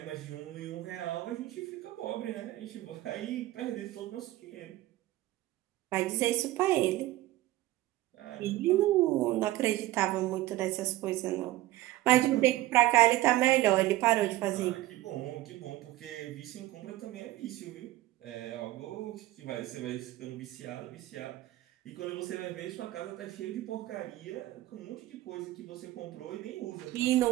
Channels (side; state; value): left; quieter; 16.3 dB